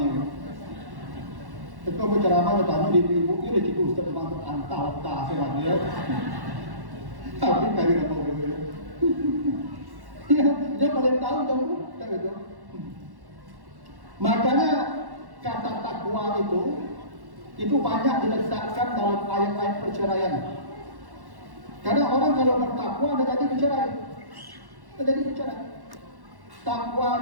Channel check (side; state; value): left; late; 1.1 ms